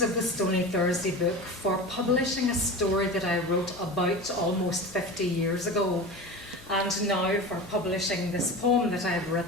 of the Stony Thursday book for publishing a story that I wrote about almost 50 years ago, and now for publishing this poem that I've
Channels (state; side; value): noise; left; hum, 22 dB below the sound